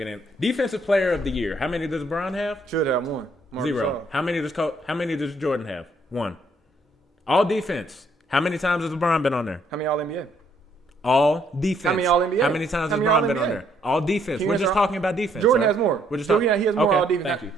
in. Defensive Player of the Year. How many does LeBron have? Should have one. Zero. How many does Jordan have? One. All defense. How many times has LeBron been on there? How many All NBA? All defense. How many All NBA? How many times has LeBron been on there? All defense. We're just talking about defense. Jordan has more. We're just he has more All defense. Thank you.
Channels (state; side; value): normal; both; correlation 0.69